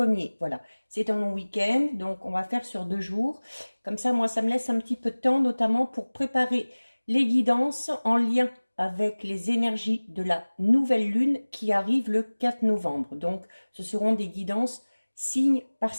Voilà, c'est un long week-end, donc on va faire sur 2 jours. Comme ça, moi, ça me laisse un petit peu de temps, notamment pour préparer les guidances en lien avec les énergies de la nouvelle lune qui arrive le 4 novembre. Donc, ce seront des guidances signe par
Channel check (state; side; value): inverted; both; correlation -1.00